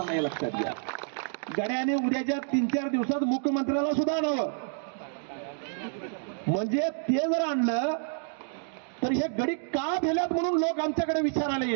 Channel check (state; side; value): silent; left; digital silence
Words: नाही. लक्षात घ्या, गड्याने उद्याच्या 3-4 दिवसात मुख्यमंत्र्याला सुद्धा आणावं. म्हणजे ते जर आणलं तर हे गडी का भेल्यात म्हणून लोक आमच्याकडे विचारायला